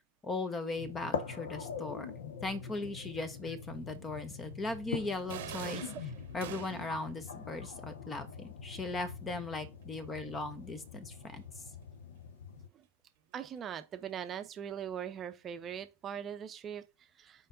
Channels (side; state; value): both; normal; correlation 0.42